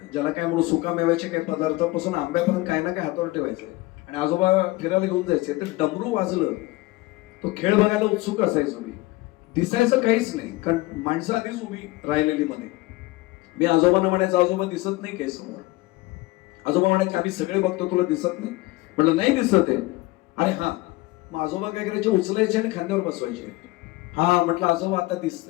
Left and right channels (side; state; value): right; quieter; 20.4 dB